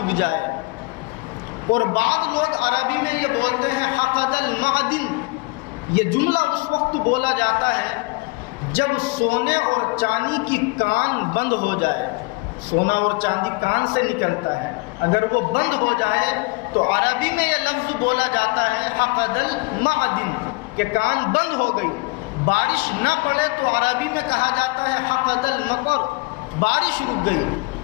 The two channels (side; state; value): right; quieter; 26.4 dB